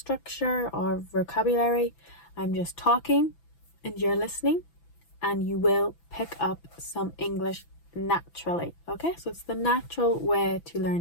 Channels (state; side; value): late; right; 6.0 ms